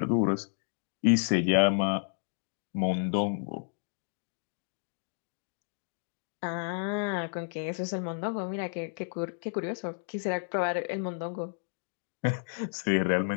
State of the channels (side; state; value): right; silent; digital silence